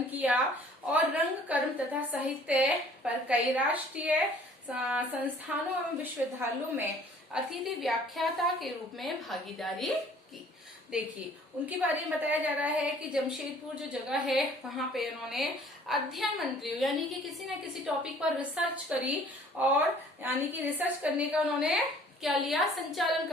किया और रंग कर्म तथा साहित्य पर कई राष्ट्रीय संस्थानों एवं विश्वविद्यालयों में अतिथि व्याख्याता के रूप में भागीदारी की। देखिए, उनके बारे में बताया जा रहा है कि जमशेदपुर जो जगह है वहां पे उन्होंने अध्ययन मंडलियों यानी कि किसी न किसी टॉपिक पर रिसर्च करी, और यानी कि रिसर्च करने का उन्होंने क्या लिया, संचालन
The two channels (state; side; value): normal; both; correlation 0.54